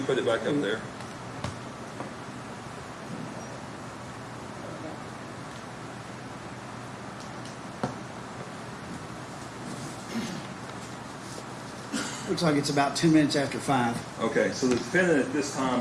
put it back up there? Looks like it's about 2 minutes after 5. Okay, so the defendant at this time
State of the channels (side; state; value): both; identical; correlation 1.00